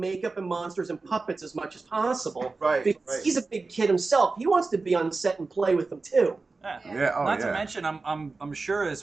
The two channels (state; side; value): quieter; left; 3.9 dB